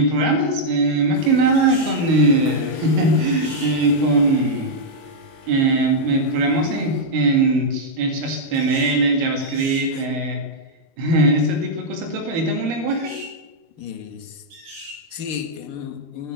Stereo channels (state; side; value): late; left; 12 ms